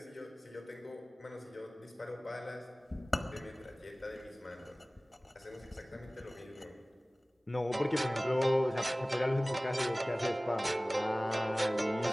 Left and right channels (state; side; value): normal; both; correlation 0.98